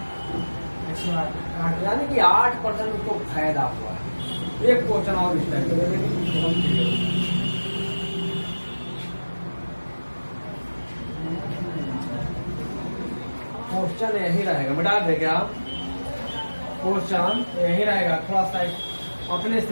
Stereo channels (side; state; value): both; inverted; correlation -1.00